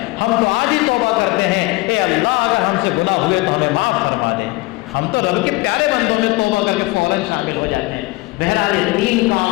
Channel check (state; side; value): quieter; right; 21.9 dB